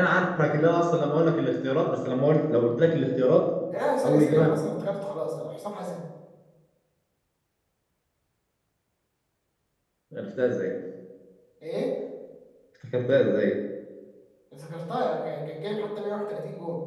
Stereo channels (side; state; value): both; identical; correlation 1.00